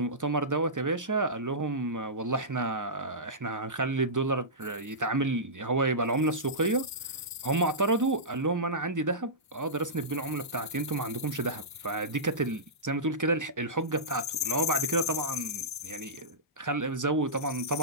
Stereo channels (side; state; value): both; normal; correlation -0.17